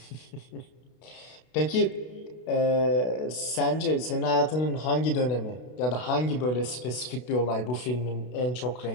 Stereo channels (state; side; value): late; right; 32 ms